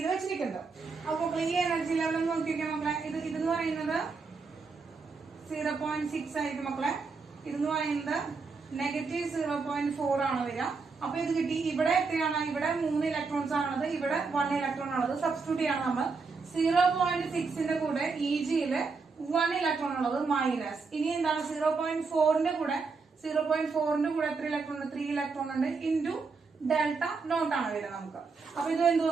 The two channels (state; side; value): quieter; left; 4.6 dB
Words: വെച്ചിരിക്കുന്നത്. അപ്പൊ ഈ എനർജി ലെവൽ നോക്കിയൊക്കെ മക്കളെ, ഇതെന്ന് പറയുന്നത് 0.6 ആയിരിക്കും മക്കളെ. ഇതെന്ന് പറയുന്നത് -0.4 ആണ് വരിക. അപ്പൊ ഇത് കിട്ടി. ഇവിടെ എത്രയാണ്? ഇവിടെ 3 ഇലക്ട്രോൺസ് ആണുള്ളത്, ഇവിടെ 1 ഇലക്ട്രോൺ ആണുള്ളത്. സബ്സ്റ്റിറ്റ്യൂട്ട് ചെയ്യണം നമ്മൾ. 0.6ന്റെ കൂടെ EGയില് 1 ഇലക്ട്രോൺ ഉള്ളത് മൈനസ്. ഇനി എന്താണ്? 0.4ന്റെ കൂടെ എത്ര ഇലക്ട്രോൺ ഉണ്ട്? 3 ഇലക്ട്രോൺ ഉണ്ട് ഇൻറ്റു ഡെൽറ്റ നോട്ട് ആണ് വരിക നമുക്ക്. അപ്പൊ ഇത് എന്ത്